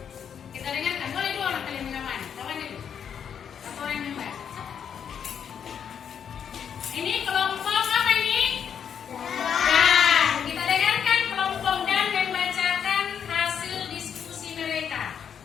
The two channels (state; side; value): quieter; right; 7.9 dB